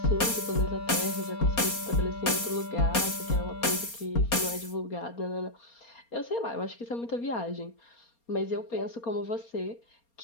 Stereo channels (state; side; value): late; right; 4.3 ms